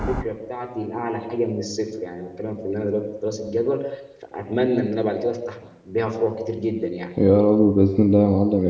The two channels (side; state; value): both; identical; correlation 1.00